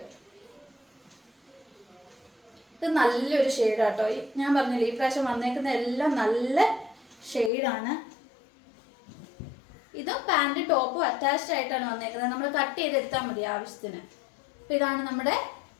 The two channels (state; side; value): drops out; right; at 7.5 s